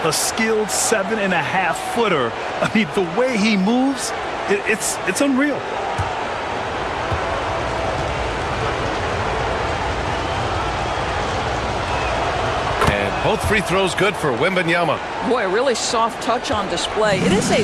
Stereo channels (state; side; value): identical; both; correlation 1.00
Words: a skilled 7.5-footer. I mean, the way he moves, it's unreal. And both free throws good for Wembanyama. Boy, a really soft touch on display. It is a